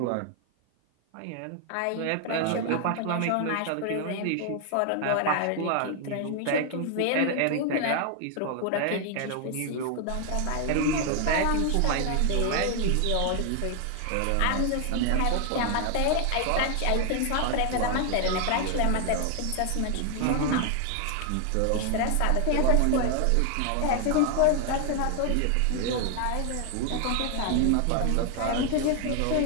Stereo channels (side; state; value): both; different; correlation 0.00